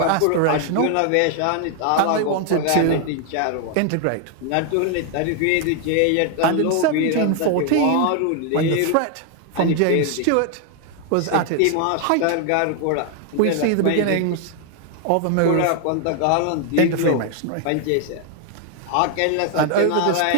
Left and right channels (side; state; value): both; different; correlation 0.00